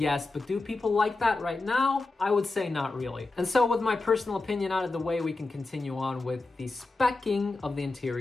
but do people like that right now? I would say not really. And so with my personal opinion out of the way, we can continue on with the specking of the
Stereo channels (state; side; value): quieter; right; 3.3 dB